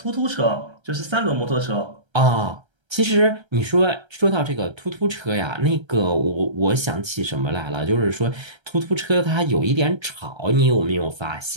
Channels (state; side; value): late; left; 1.3 ms